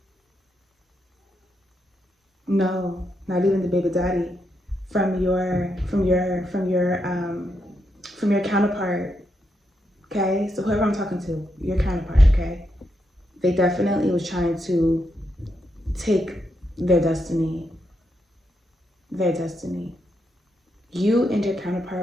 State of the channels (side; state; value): both; normal; correlation 0.82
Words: No, not even the baby daddy. From your counterpart. Okay? So whoever I'm talking to, your counterpart, okay? They definitely was trying to take their destiny. Their destiny. You and your